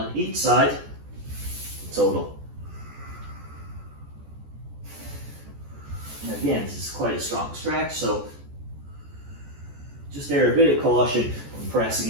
each side, total. And again, this is quite a strong stretch, so just there a bit of caution when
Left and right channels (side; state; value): left; late; 14 ms